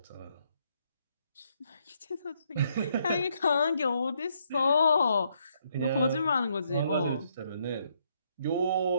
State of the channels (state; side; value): inverted; both; correlation -0.73